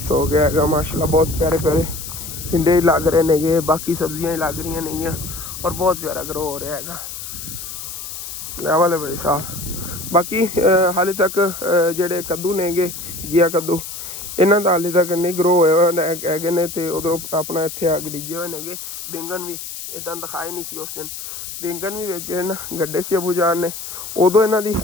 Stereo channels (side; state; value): left; noise; hiss, 9 dB below the sound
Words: ਹੋ ਗਿਆ ਹੈਗਾ ਮਾਸ਼ਾਅੱਲਾ। ਬਹੁਤ ਪਿਆਰੇ ਪਿਆਰੇ ਟਿੰਡੇ ਹੀ ਲੱਗ ਰਹੇ ਨੇਗੇ, ਬਾਕੀ ਸਬਜ਼ੀਆਂ ਹੀ ਲੱਗ ਰਹੀਆਂ ਨੇਗੀਆਂ, ਔਰ ਬਹੁਤ ਪਿਆਰਾ ਗਰੋ ਹੋ ਰਿਹਾ ਹੈਗਾ। ਲੈਵਲ ਹੈ ਭਾਈ ਸਾਹਿਬ। ਬਾਕੀ ਹਾਲੇ ਤੱਕ ਜਿਹੜੇ ਕੱਦੂ ਨੇਗੇ ਘੀਆ ਕੱਦੂ, ਇਹਨਾਂ ਦਾ ਹਾਲੇ ਤੱਕ ਨਹੀਂ ਗਰੋ ਹੋਏ ਹੋਏ ਹੈਗੇ ਨੇ। ਅਤੇ ਉਧਰੋਂ ਆਪਣਾ ਇੱਥੇ ਅੱਗ ਡਿੱਗੇ ਹੋਏ ਨੇਗੇ। ਬੈਂਗਣ ਵੀ ਇੱਦਾਂ ਦਿਖਾਏ ਨਹੀਂ ਸੀ ਉਸ ਦਿਨ। ਬੈਂਗਣ ਵੀ ਵਿੱਚ ਨਾ ਗੱਡੇ ਸੀ ਅਬੂ ਜਾਨ ਨੇ, ਉਦੋਂ ਇਹਨਾਂ ਦੀ